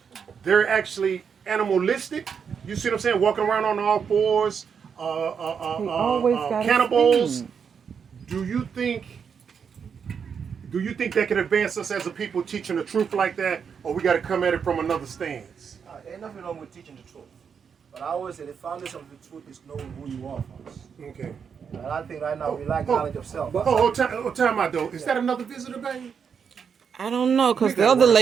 they're actually animalistic. You see what I'm saying? Walking around on all fours, always got a cannibals. spoon. Do you think that can advance us as a people teaching the truth like that, or we got to come at it from another stance? Ain't nothing wrong with teaching the truth. But I always say the foundation of the truth is knowing who you are first. Okay. And I think right now we lack knowledge of self. Time out though. Is that another visitor, baby? I don't know, because the other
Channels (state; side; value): quieter; left; 6.7 dB